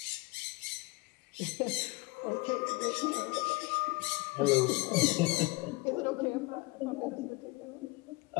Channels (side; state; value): right; quieter; 24.2 dB